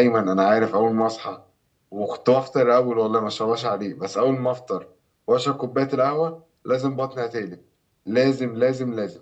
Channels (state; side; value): identical; both; correlation 1.00